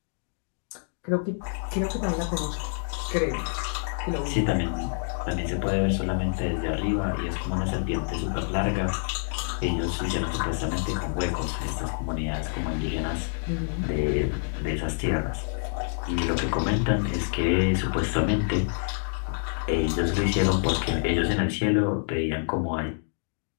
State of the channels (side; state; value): right; silent; digital silence